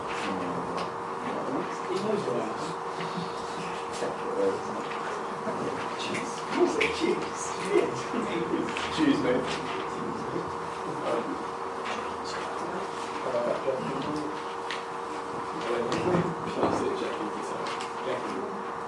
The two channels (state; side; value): identical; both; correlation 1.00